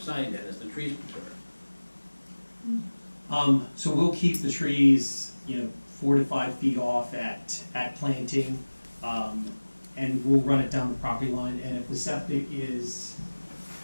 then as the trees mature. So we'll keep the trees, 4 to 5 feet off at planting, and we'll run it down the property line. And if the septic is,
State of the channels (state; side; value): inverted; both; correlation -1.00